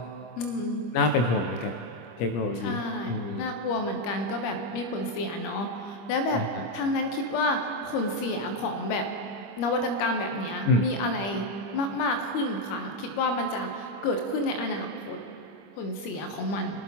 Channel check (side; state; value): right; late; 25 ms